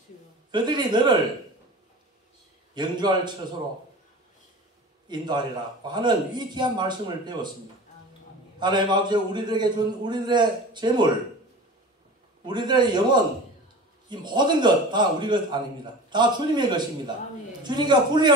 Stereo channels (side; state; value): both; normal; correlation 0.36